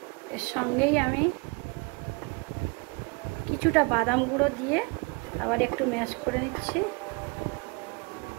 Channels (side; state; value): left; quieter; 29.8 dB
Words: এর সঙ্গেই আমি কিছুটা বাদাম গুঁড়ো দিয়ে আবার একটু ম্যাশ করে নিচ্ছি,